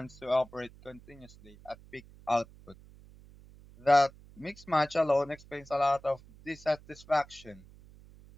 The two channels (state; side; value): noise; right; hum, 22 dB below the sound